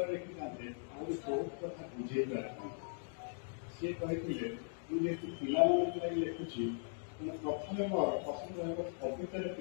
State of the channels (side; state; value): right; silent; digital silence